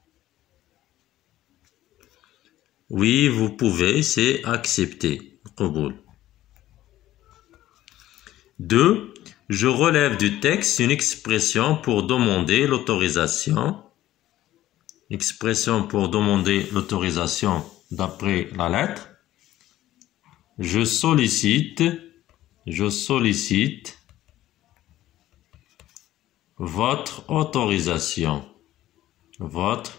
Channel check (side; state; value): right; quieter; 14.3 dB